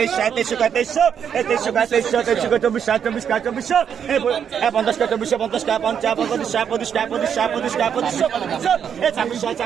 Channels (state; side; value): quieter; left; 8.0 dB